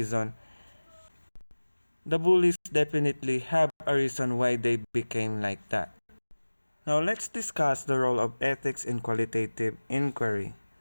the bullies definitely have a reason why they became like that. Now let's discuss the role of ethics in qualitative inquiry.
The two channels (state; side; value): inverted; both; correlation -1.00